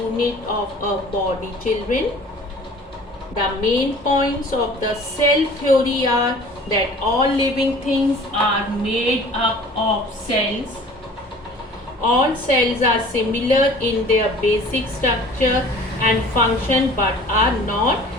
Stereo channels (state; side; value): normal; both; correlation 0.47